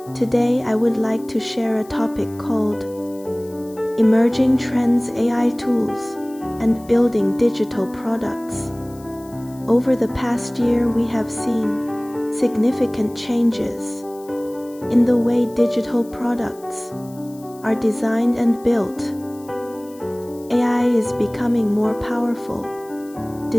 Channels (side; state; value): left; noise; hiss, 24 dB below the sound